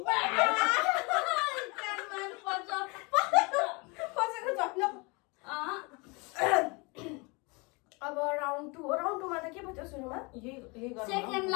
अब राउन्ड 2 हो राउन्ड 2 मा त के भयो सुरुमा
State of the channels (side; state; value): right; quieter; 28.6 dB